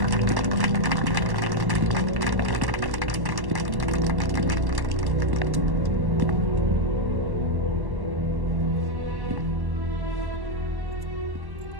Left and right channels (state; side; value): late; left; 1.1 ms